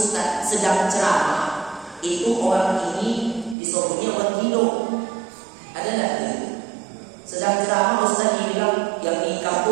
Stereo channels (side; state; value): left; drops out; at 3.6 s